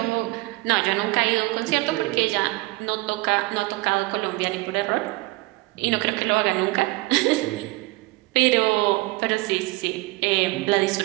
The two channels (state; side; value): quieter; left; 22.1 dB